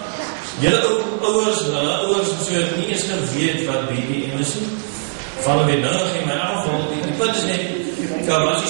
julle ouers so het nie eens geweet wat BBM is nie. Vallen weer nodig in my geval. Die punt is net, daar was nie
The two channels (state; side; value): silent; left; 66 dB below the other